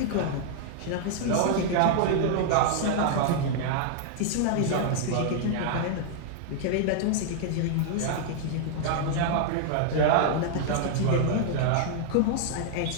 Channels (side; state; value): both; different; correlation -0.01